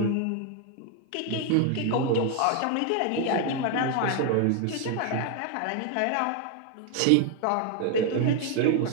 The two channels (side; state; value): both; different; correlation 0.01